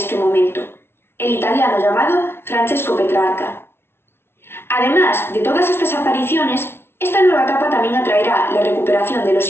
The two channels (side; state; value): right; late; 0.12 ms